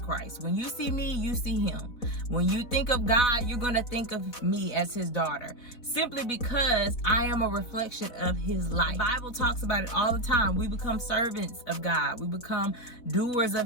When you see me, you see him. When you think of God, you're going to think of me as his daughter. Simply because I am a reflection of his life. The Bible talks about it all the time. We become servants of God. We become doers of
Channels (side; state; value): right; late; 4.1 ms